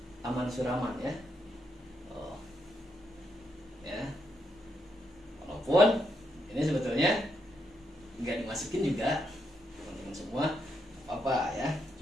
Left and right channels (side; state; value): both; normal; correlation 0.80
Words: aman suraman ya. Ya. Walaupun ini sebetulnya nggak dimasukin juga teman-teman semua apa ya.